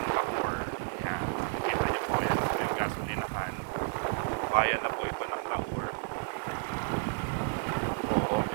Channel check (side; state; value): left; silent; 57 dB below the other